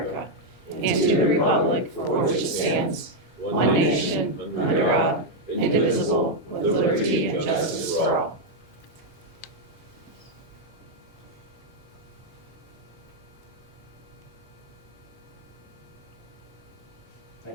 and to the republic for which it stands, one nation, under God, indivisible, with liberty and justice for all.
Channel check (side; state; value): both; normal; correlation 0.00